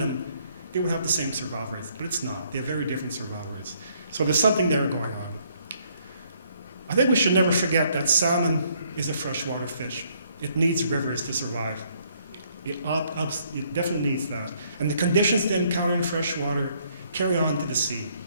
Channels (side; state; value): both; inverted; correlation -0.67